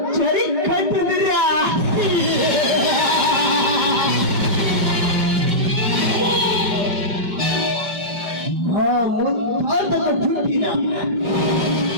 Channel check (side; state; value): left; late; 5.4 ms